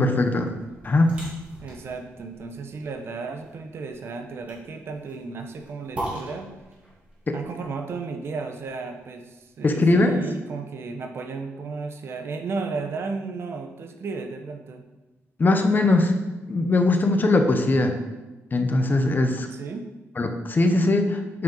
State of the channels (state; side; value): normal; both; correlation 0.80